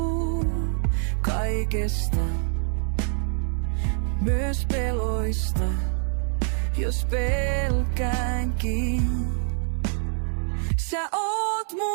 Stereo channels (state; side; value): silent; left; 60 dB below the other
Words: kaikesta, myös peloista, jos pelkäänkin. Sä oot